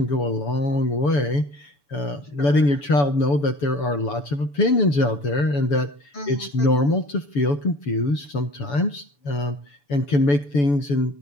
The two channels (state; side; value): late; right; 7.0 ms